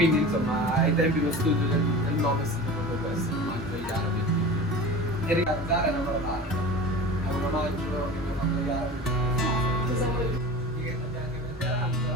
insomma ai tempi lo studio del nome è stato proprio questo, l'omaggio agli arabi. E ricordare era una parte, è un omaggio che mi ha fatto gli arabi. Cosa vuoi dire? Che abbiamo anche preparanza,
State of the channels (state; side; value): normal; both; correlation 0.35